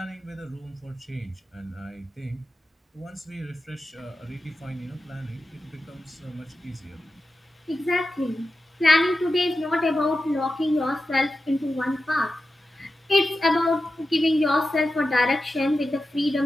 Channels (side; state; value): both; normal; correlation 0.91